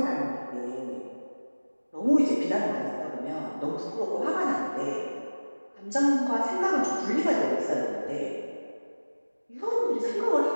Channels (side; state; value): both; inverted; correlation -1.00